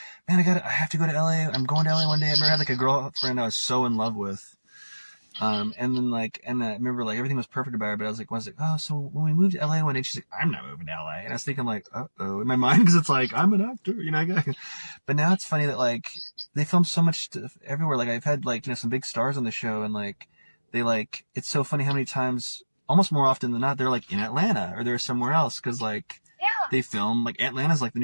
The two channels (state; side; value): inverted; both; correlation -1.00